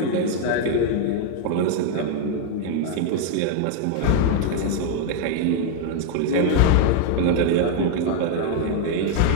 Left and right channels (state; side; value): different; both; correlation 0.00